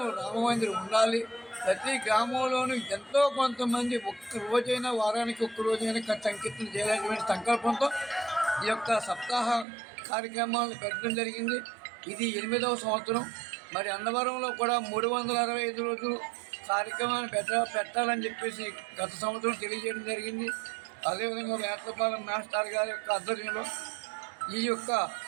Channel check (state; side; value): drops out; left; at 9.7 s